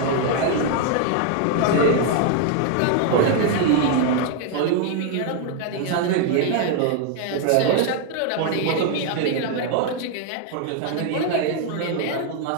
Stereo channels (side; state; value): both; different; correlation 0.00